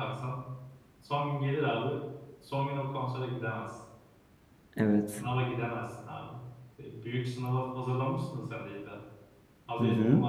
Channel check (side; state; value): both; identical; correlation 1.00